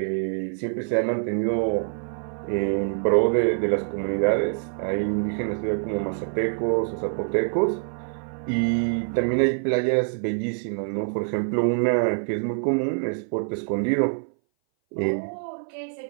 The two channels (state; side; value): silent; left; 59 dB below the other